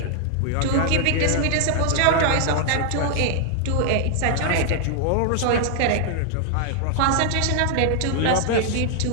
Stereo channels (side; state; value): both; different; correlation 0.00